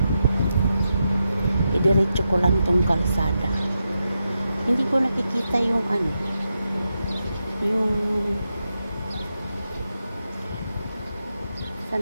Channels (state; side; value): inverted; both; correlation -0.87